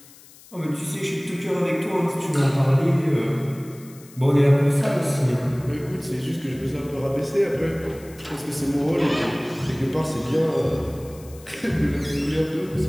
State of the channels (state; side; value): noise; left; hiss, 23 dB below the sound